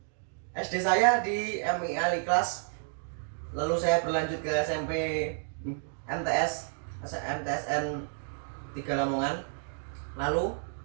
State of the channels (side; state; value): left; silent; digital silence